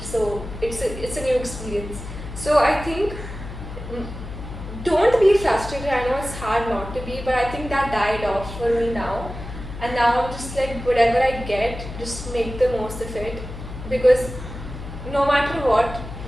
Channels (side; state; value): left; noise; hum, 10 dB below the sound